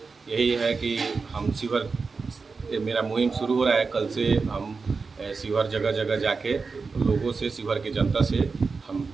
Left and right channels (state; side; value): quieter; left; 4.6 dB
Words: यही है कि हम शिवहर, मेरा मुहिम शुरू हो रहा है। कल से हम शिवहर जगह जगह जाके लोगों से, शिवहर की जनता से हम